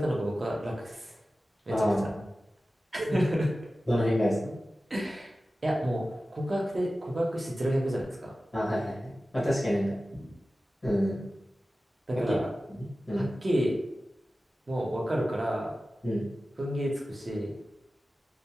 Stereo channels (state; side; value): normal; both; correlation 0.95